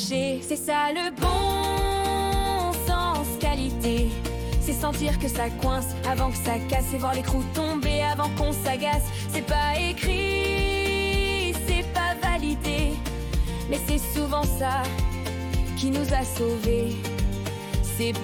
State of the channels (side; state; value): both; identical; correlation 1.00